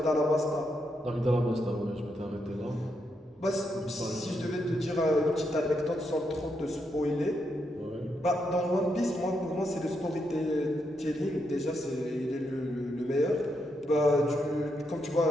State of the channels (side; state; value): both; normal; correlation 0.81